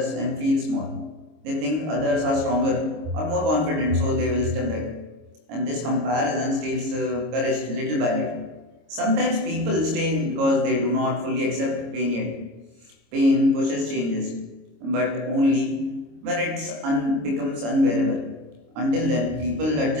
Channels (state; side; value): late; left; 26 ms